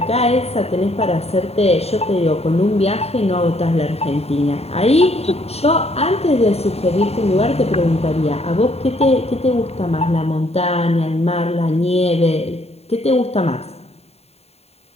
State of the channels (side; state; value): right; late; 0.30 ms